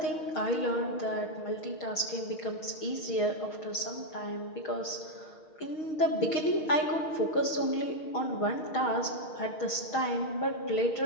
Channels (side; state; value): right; late; 6.3 ms